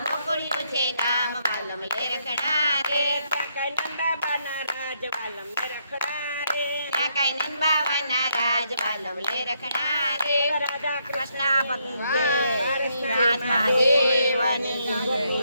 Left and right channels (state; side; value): inverted; both; correlation -0.75